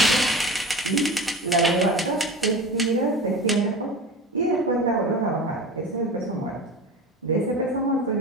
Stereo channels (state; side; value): normal; both; correlation 0.31